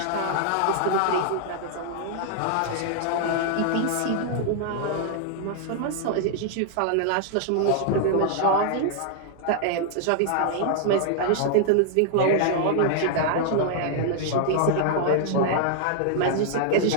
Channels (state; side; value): different; both; correlation -0.01